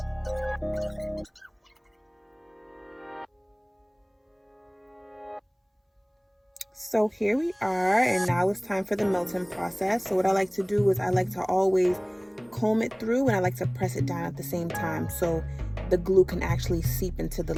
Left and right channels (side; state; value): both; identical; correlation 1.00